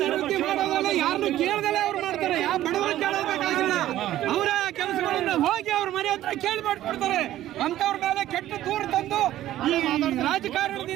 ಮಾಡೋದಲ್ಲ, ಯಾರನ್ನು ಕೇಳದಲ್ಲೇ ಅವ್ರು ಮಾಡ್ತಾರೆ. ಯಾವ ಬಡವರು ಕೇಳಬೇಕಾಗಿಲ್ಲ. ಅವರ ಕೆಲಸಗಳನ್ನ ಹೋಗಿ ಅವ್ರ ಮನೆ ಹತ್ರ ಕೇಳಿ ಮಾಡ್ಕೊಡ್ತಾರೆ. ಅಂತವ್ರ ಮೇಲೆ ಕೆಟ್ಟ ದೂರ ತಂದು ಈ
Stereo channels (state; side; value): quieter; left; 13.6 dB